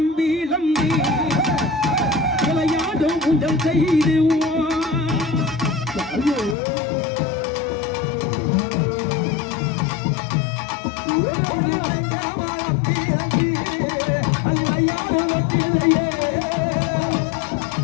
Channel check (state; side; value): drops out; right; at 6.6 s